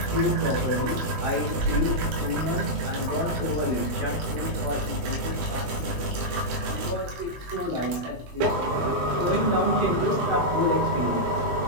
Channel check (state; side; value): late; left; 17 ms